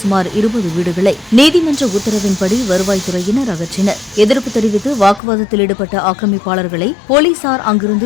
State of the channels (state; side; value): drops out; right; at 5.2 s